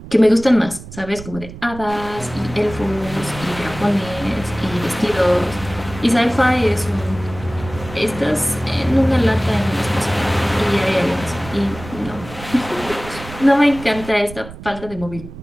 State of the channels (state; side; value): noise; right; rumble, 14 dB below the sound